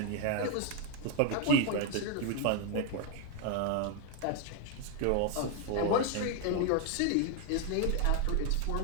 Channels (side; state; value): both; different; correlation 0.01